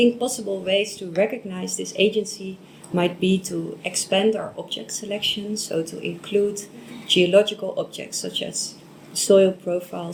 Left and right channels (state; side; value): identical; both; correlation 1.00